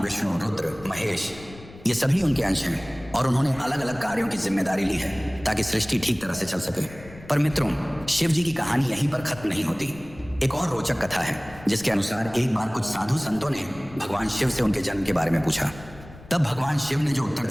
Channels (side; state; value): left; noise; rumble, 18 dB below the sound